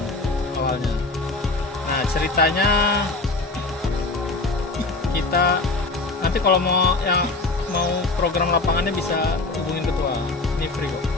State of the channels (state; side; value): quieter; right; 3.3 dB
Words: awalnya. Nah ceritanya kita nanti kalau mau program lapangannya bisa hubungin ketua, ini free kok.